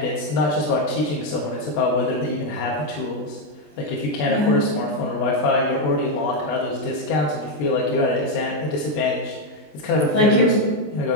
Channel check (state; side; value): late; right; 20 ms